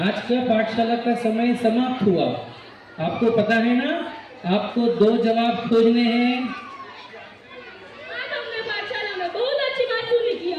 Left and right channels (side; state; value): both; identical; correlation 1.00